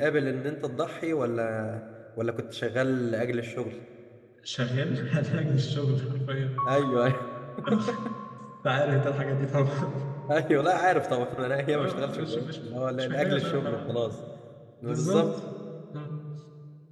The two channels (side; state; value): both; identical; correlation 1.00